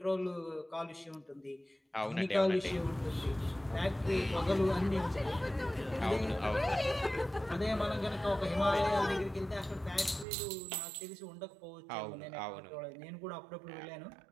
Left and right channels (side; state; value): left; drops out; at 10.2 s